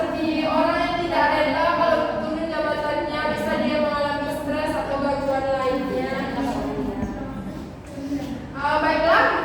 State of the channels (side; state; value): both; identical; correlation 1.00